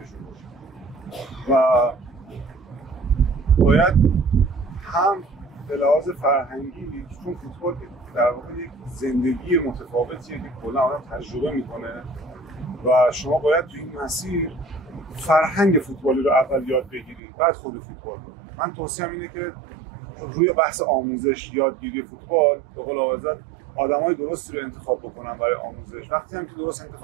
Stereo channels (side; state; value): left; drops out; at 17.2 s